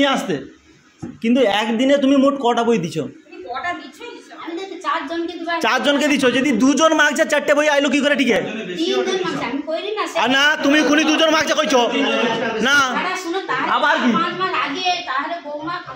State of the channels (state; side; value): identical; both; correlation 1.00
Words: আসতে, কিন্তু একদিনে তুমি মোট কটা বই দিছো? 4জনকে দিছো। যদি 2জন মাগছে 4টে বই আইলো কি করে? ঠিক আছে না তুমি খুনি 2জন মাগছে কইছো না, আবার কি?